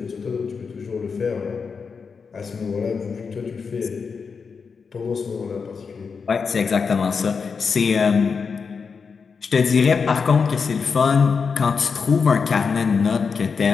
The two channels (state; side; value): quieter; right; 5.5 dB